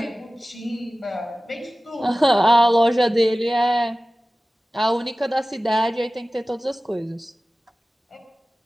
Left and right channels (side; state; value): both; normal; correlation 0.97